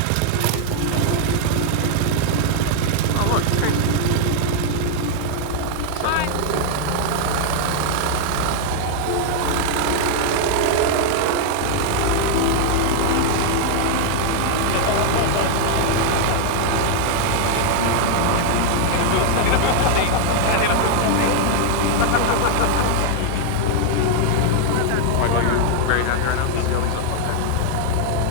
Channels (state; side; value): different; both; correlation 0.00